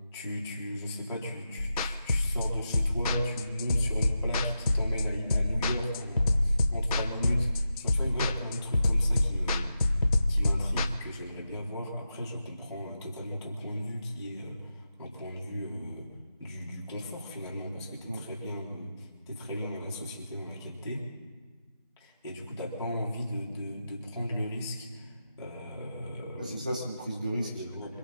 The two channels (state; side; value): inverted; both; correlation -0.88